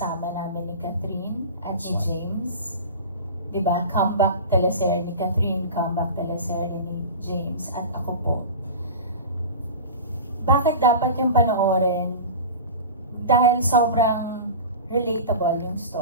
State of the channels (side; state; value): both; inverted; correlation -0.32